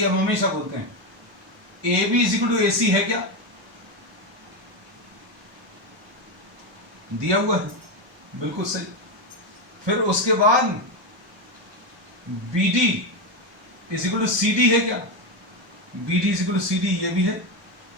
हम हमेशा बोलते हैं AB is equal to AC है क्या? दिया हुआ है, बिल्कुल सही। फिर उसके बाद BD is equal to CD है क्या? BD is equal to CD ये भी है,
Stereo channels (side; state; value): left; late; 1.1 ms